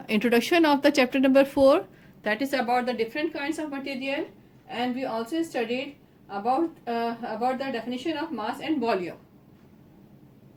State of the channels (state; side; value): identical; both; correlation 1.00